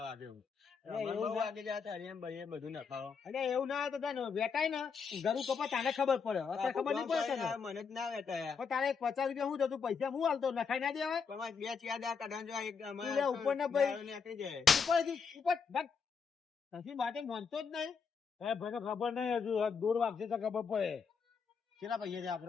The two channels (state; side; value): quieter; right; 5.9 dB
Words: દેવું અરે એવું બહુ ના- વાગી જાય હરિયમ ભાઈ બધું ન ખાઓ અરે એવું ના હોય તો તને વેટાય ને ઘરું કપા તાને ખબર પડે અત્યારે ખબર નહીં પડે તને. મને જ ના વેટાયા પણ તારે 50 રૂપિયા હું થતું પૈસા હું હાલતો નખાઈ ના દેવાય પણ મારે બે ચાર દાડા કાઢવાનું જો એક તું લે ઉપર ના ભાઈ. દારૂ નીકળી જાય ઉપરથી ઉપર ભાગ. નથી માટે માનતો જ નહીં એ ભાઈને ખબર નહીં હજુ આ દૂર વાગશે તો ખબર પડે કેટલા પૈસા છે